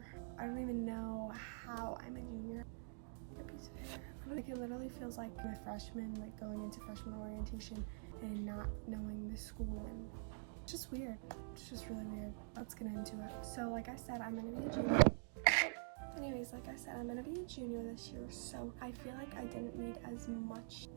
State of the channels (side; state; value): left; silent; digital silence